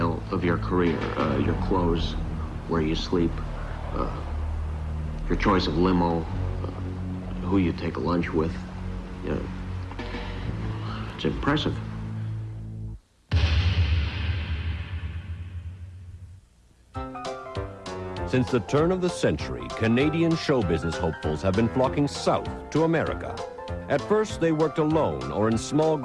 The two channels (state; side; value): identical; both; correlation 1.00